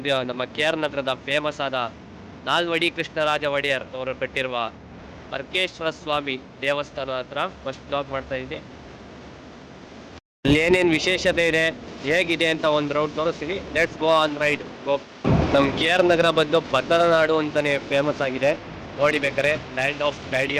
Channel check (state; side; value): identical; both; correlation 1.00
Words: ನಮ್ಮ ಕೆ ಆರ್ ನಗರದ ಫೇಮಸ್ ಆದ ನಾಲ್ವಡಿ ಕೃಷ್ಣರಾಜ ಒಡೆಯರ್ ಅವರು ಕಟ್ಟಿರುವ ಅರ್ಕೇಶ್ವರ ಸ್ವಾಮಿ ದೇವಸ್ಥಾನ ಹತ್ರ ಫಸ್ಟ್ ಬ್ಲಾಗ್ ಮಾಡ್ತಾ ಇದ್ದೀನಿ. ಅಲ್ಲಿ ಏನೇನು ವಿಶೇಷತೆ ಇದೆ, ಹೇಗಿದೆ ಅಂತ ಒಂದು ರೌಂಡ್ ತೋರಿಸ್ತೀನಿ. Let's go on ride. Go. ನಮ್ಮ ಕೆ ಆರ್ ನಗರ ಬಂದು ಬದರ ನಾಡು ಅಂತಾನೆ ಫೇಮಸ್ ಆಗಿದೆ. ನೋಡಿ ಬೇಕಾರೆ, land of daddy